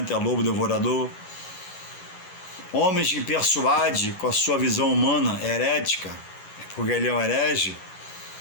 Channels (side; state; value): right; late; 11 ms